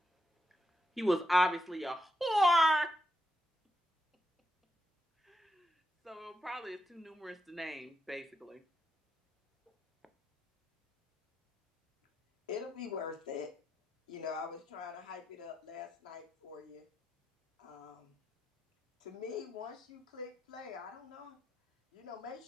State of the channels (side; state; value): both; normal; correlation 0.83